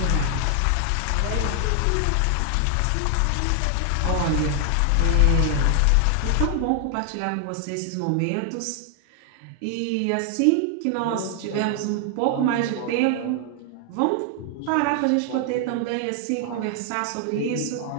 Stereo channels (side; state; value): both; different; correlation 0.00